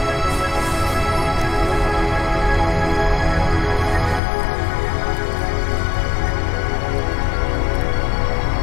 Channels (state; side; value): drops out; right; at 4.2 s